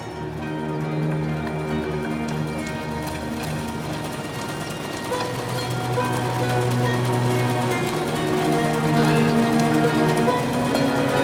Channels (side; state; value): both; identical; correlation 1.00